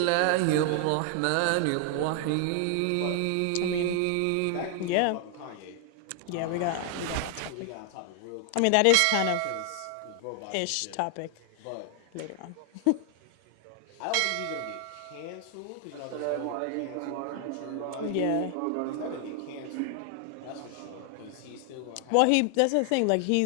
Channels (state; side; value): different; both; correlation 0.00